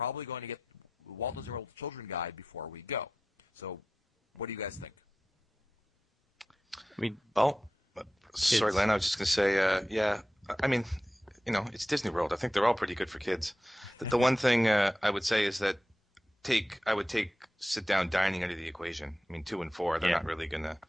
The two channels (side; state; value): both; normal; correlation 0.92